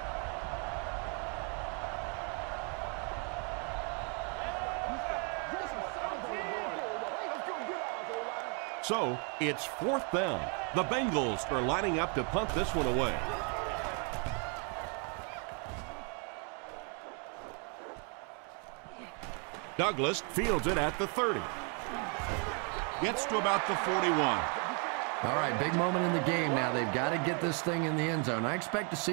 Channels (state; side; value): quieter; left; 37.9 dB